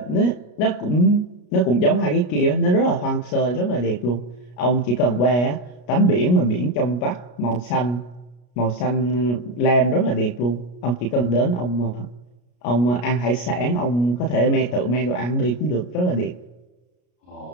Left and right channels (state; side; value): late; right; 33 ms